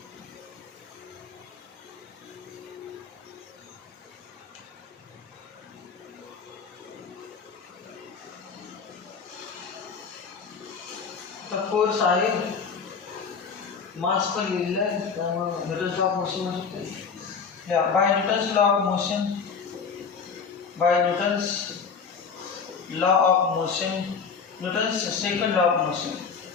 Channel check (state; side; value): quieter; right; 5.7 dB